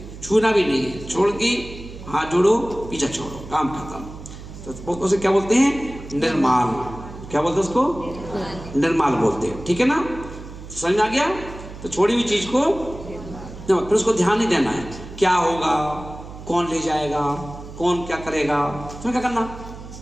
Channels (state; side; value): noise; right; hum, 14 dB below the sound